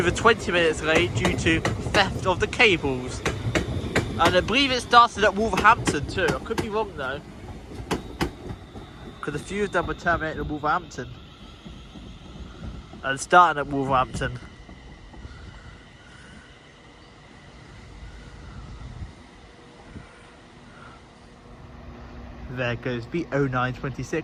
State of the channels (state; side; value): identical; both; correlation 1.00